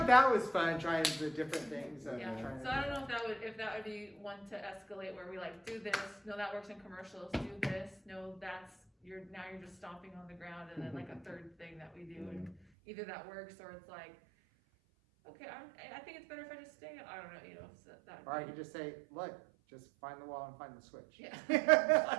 that was fun, trying the different things. Yeah. Trying So I don't know if that would be one to escalate where we like do this. No, that works in commercials. Do this. No, you're just stomping on the ground, and then like a third thing that we do, and either that works or it's like, okay, I think it's better if I just stay. I don't know, So that. Or I could just say, look, just find the wall and find the switch. Yeah.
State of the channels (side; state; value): left; drops out; at 12.6 s